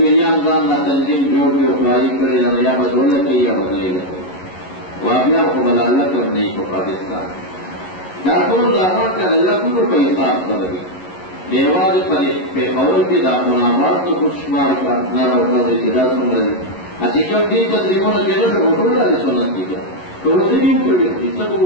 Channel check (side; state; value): right; late; 11 ms